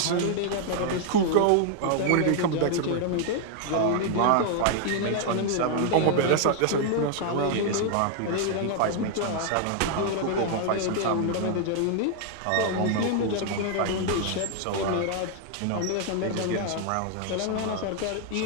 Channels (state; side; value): different; both; correlation 0.00